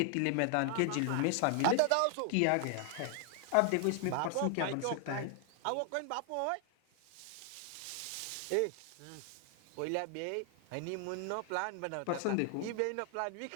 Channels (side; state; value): both; different; correlation 0.00